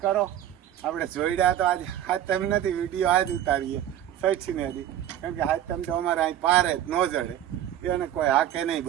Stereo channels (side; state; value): left; quieter; 11.5 dB